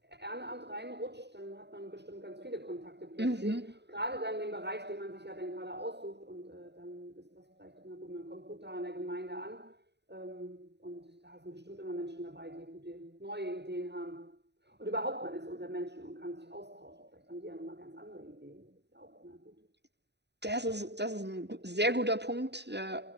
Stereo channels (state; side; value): late; left; 0.50 ms